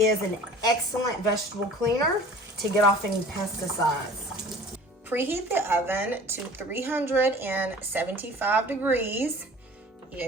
an excellent vegetable cleaner to get off any pesticides. Preheat the oven to 375 degrees.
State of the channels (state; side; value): normal; both; correlation 0.45